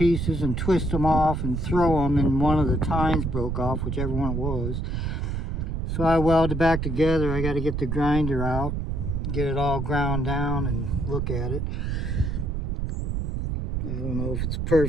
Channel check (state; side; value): noise; right; rumble, 2 dB below the sound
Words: and twist them off and throw them, and one of the tines broke off, whichever one it was. So I welded it back together. I got to get the grinder out, get it all ground down and look at it. I don't know if it's